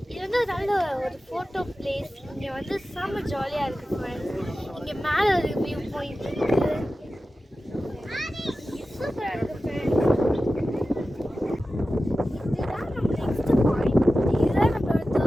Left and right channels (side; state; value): both; normal; correlation 0.94